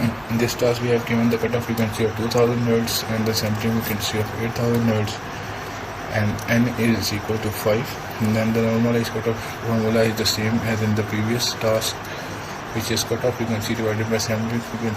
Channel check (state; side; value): identical; both; correlation 1.00